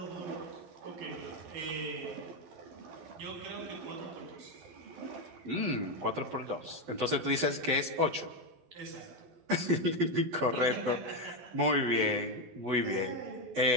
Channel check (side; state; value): left; late; 12 ms